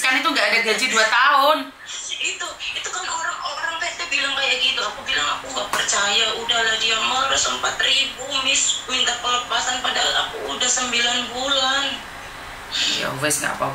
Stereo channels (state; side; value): identical; both; correlation 1.00